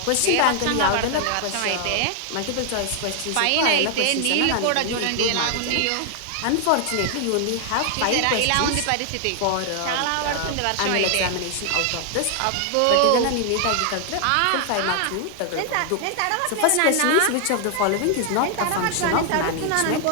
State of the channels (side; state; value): both; different; correlation 0.00